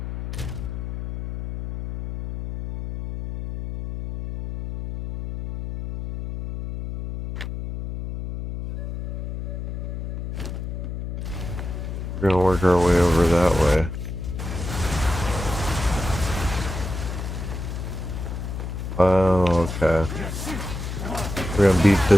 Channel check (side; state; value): left; noise; hum, 6 dB below the sound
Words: We're gonna work our way over that way. Oh, okay. We're gonna beat